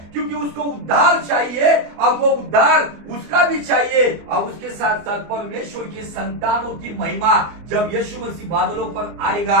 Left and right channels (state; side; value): late; left; 24 ms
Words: क्योंकि उसको उद्धार चाहिए और वो उद्धार उसका भी चाहिए। और उसके साथ साथ परमेश्वर की संतानों की महिमा, जब यीशु मसीह बादलों पर